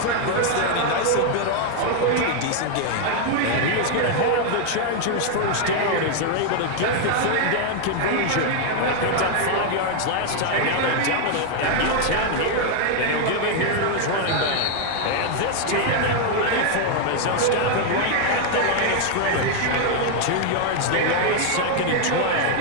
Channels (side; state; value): both; different; correlation 0.00